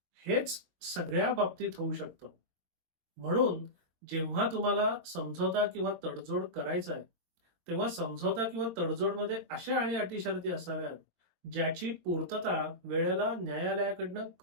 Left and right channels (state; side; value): late; left; 22 ms